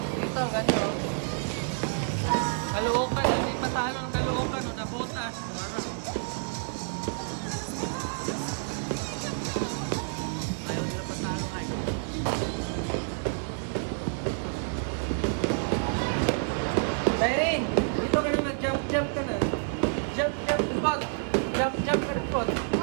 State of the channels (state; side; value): silent; left; digital silence